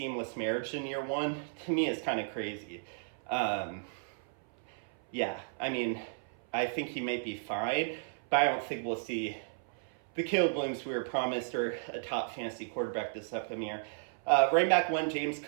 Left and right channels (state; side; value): silent; left; 55 dB below the other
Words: marriage in year one, to me is kind of crazy. I think he may be fine, but I don't think we'll see the Caleb Williams we were promised or a top fantasy quarterback this upcoming year. Running back one, James